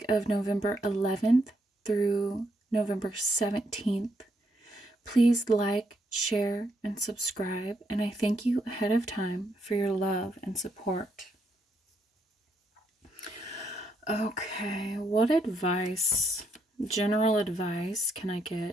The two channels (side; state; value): both; normal; correlation 0.75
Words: of November 11th through November 17th. Please like, share, and subscribe, and I thank you ahead of time for your love and support. Okay, what general advice can I